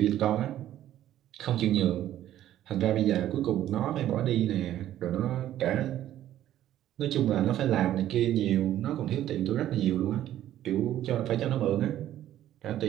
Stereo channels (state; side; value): quieter; left; 12.5 dB